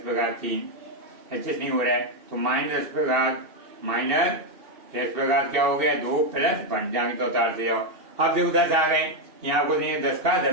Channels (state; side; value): late; left; 2.7 ms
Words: प्रकार 3, एडजस्ट नहीं हो रहा है, तो माइनस प्रकार माइनस एस प्रकार क्या हो गया 2 प्लस 1, जाएंगे तो उतार से जाओ। अब देखो 10 आ गए, यहाँ को नहीं 10 का